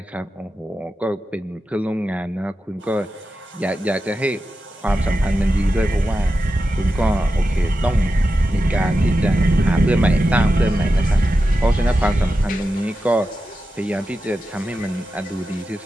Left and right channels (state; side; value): normal; both; correlation 0.91